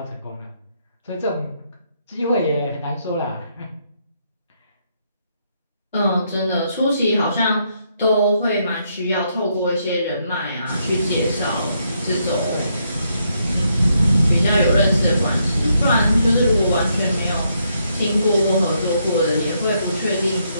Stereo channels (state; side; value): inverted; both; correlation -0.76